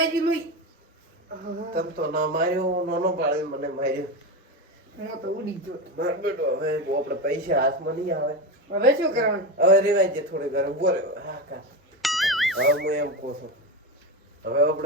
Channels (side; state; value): both; normal; correlation 0.17